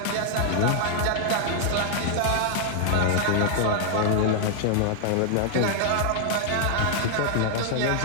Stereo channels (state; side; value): different; both; correlation -0.01